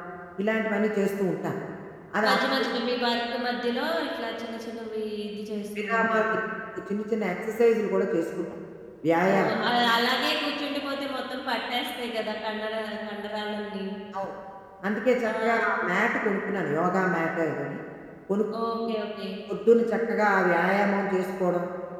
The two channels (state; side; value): identical; both; correlation 1.00